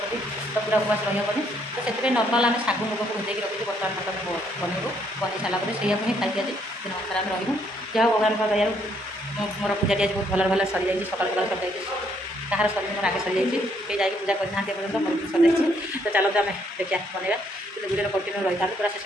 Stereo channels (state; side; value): normal; both; correlation 0.70